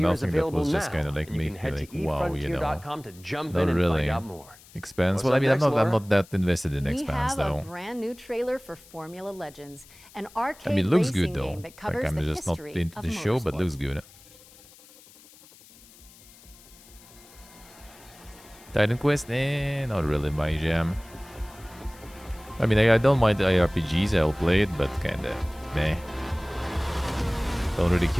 that was just kind of like making me like, wow, you know. Not really. Expanse. Well, I mean, I'm not that invested in Expanse though. We have a brand new trailer for Formula Legends, an arcade it looks racing good though. game that covers like, I'm the just not history into of the show, but motorsport. looks good. Titan Quest? Not really my jam. I mean, I don't mind IRPGs, I'll play it, but kinda meh. Don't really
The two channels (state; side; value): noise; left; hiss, 23 dB below the sound